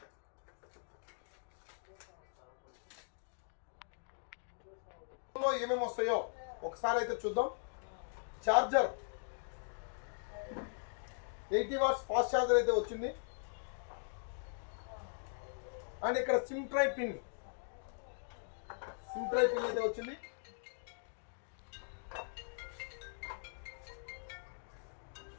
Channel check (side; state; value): right; silent; digital silence